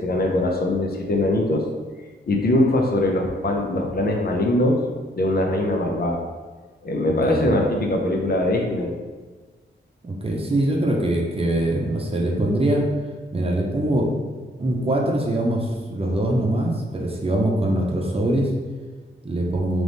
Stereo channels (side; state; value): both; normal; correlation 0.66